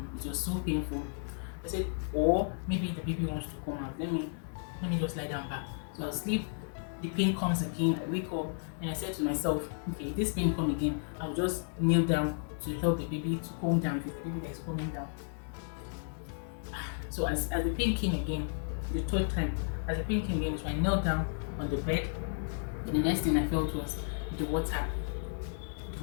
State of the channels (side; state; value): right; silent; digital silence